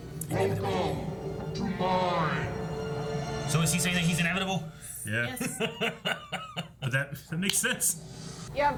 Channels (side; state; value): both; identical; correlation 1.00